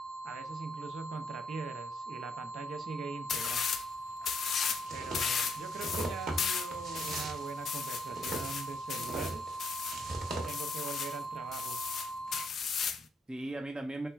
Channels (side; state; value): both; normal; correlation 0.74